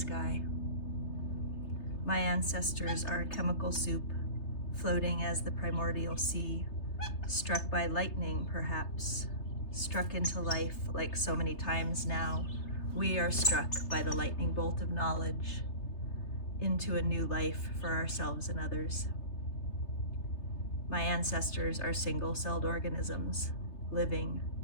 My ancestors are a chemical soup, floating as the primordial sea, struck by lightning perhaps, struck into life like so many times now. We are struck by the lightning bolt of knowledge into a new life for ourselves and others. My ancestors are single-celled organisms, living,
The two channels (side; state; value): right; late; 3.3 ms